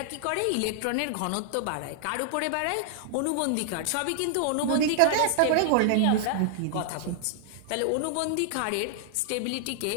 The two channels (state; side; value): different; both; correlation -0.01